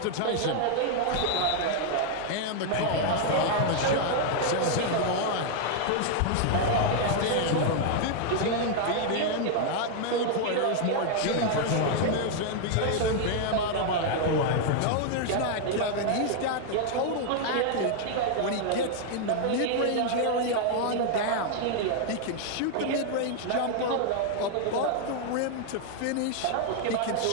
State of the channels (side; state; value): both; different; correlation 0.00